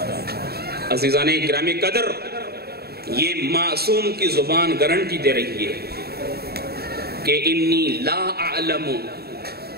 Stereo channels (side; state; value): left; late; 0.46 ms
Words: عزیزان گرامی قدر، یہ معصوم کی زبان گارنٹی دے رہی ہے کہ انی لا اعلم